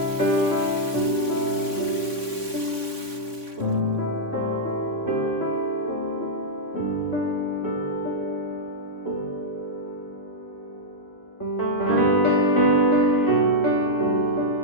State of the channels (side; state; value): right; late; 3.6 ms